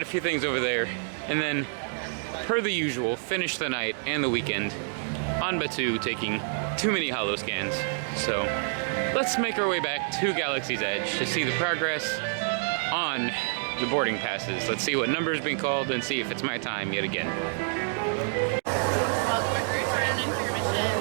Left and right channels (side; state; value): left; silent; digital silence